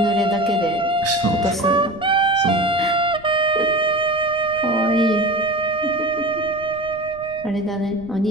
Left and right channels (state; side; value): noise; right; rumble, 21 dB below the sound